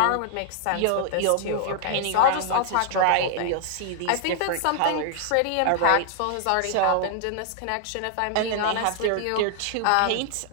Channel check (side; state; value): both; different; correlation 0.00